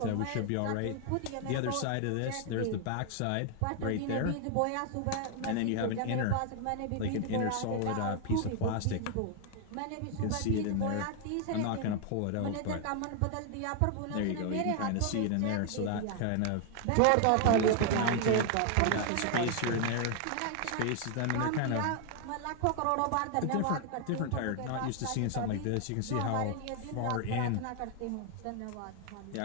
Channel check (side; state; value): both; different; correlation 0.00